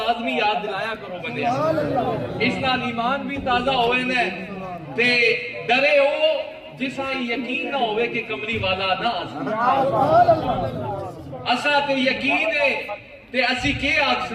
یاد دلایا کرو بندے اس نال ایمان بھی تازہ ہوئے نے تے ڈرے ہو جسا یقین نہ ہوئے کہ کملی والا نہ اسا تے یقین ہے تے اسی کے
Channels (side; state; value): both; identical; correlation 1.00